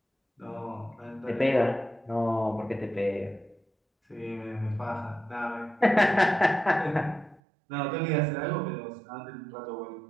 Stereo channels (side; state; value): left; drops out; at 7.4 s